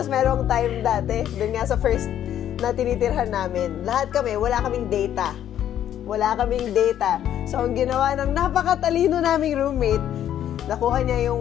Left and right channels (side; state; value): right; quieter; 10.8 dB